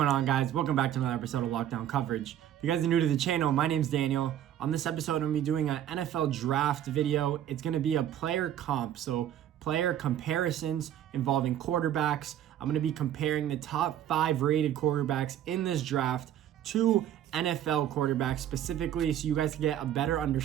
on, guys? Welcome back to another episode of Lockdown Coverage. If you guys are new to the channel, my name's Daniel. On this episode, I'm going to be doing an NFL draft video. It's going to be a player comp, so player comparisons involving quarterbacks. I'm going to be comparing the top 5 rated quarterbacks in this draft to NFL quarterbacks specifically, so you guys can get a better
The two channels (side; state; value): left; quieter; 11.0 dB